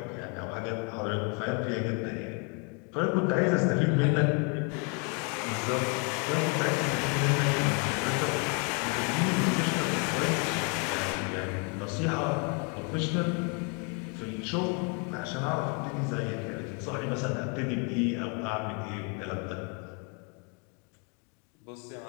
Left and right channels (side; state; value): right; quieter; 36.1 dB